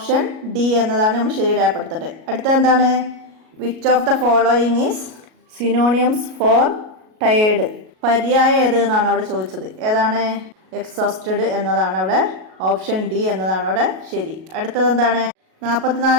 ഡി എന്നതാണ് നമ്മൾ ശരി രേഖപ്പെടുത്തേണ്ടത്. അടുത്ത എന്താണ്? Which of the following is synonyms for tired? പര്യായം ഏത് എന്നാണ് അവിടെ ചോദിച്ചത്. ഏതാണ്? എക്സോസ്റ്റഡ് എന്നതാണ് അവിടെ ഓപ്ഷൻ ഡി എന്നതാണ് അവിടെ ശരി. അടുത്തത് എന്താണ്?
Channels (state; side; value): late; left; 37 ms